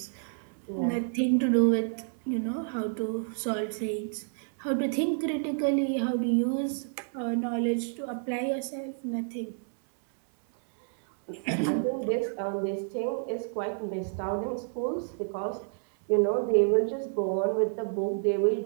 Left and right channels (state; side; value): silent; left; 58 dB below the other